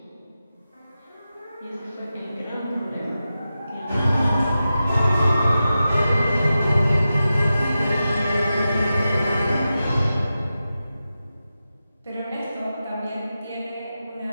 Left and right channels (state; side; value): inverted; both; correlation -0.92